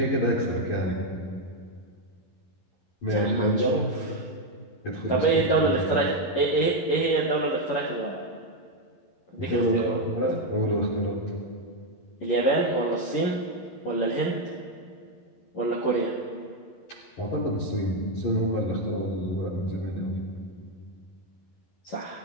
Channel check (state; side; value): late; right; 11 ms